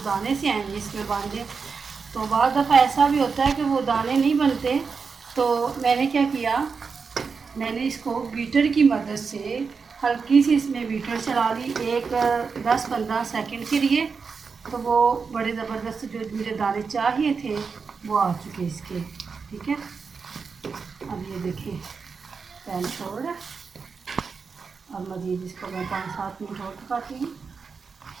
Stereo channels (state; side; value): quieter; left; 5.2 dB